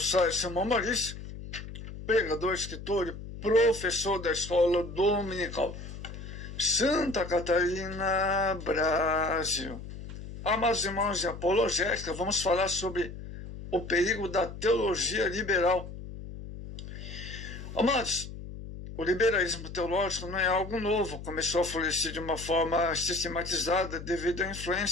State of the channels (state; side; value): noise; left; hum, 11 dB below the sound